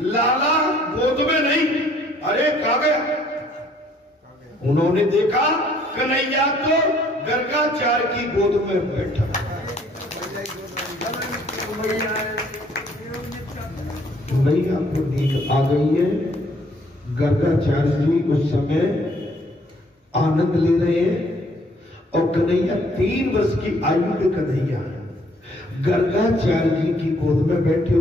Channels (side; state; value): both; normal; correlation 0.63